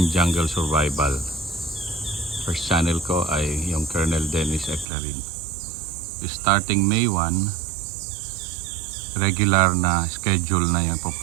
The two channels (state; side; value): drops out; left; at 4.9 s